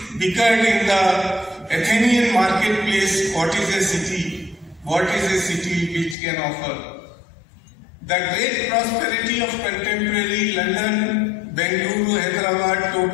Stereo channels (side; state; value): right; drops out; at 6.2 s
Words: bickered in the Athenian marketplace, what is a city? What is a city which can offer? The great prosperity of contemporary London, Bengaluru, Hyderabad,